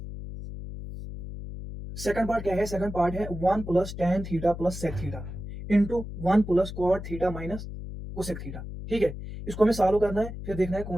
सेकंड पार्ट क्या है? सेकंड पार्ट है 1 plus tan theta plus sec theta into 1 plus cot theta minus cosec theta. ठीक है, इसको हमें solve करना है, फिर देखना है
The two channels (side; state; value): left; noise; hum, 9 dB below the sound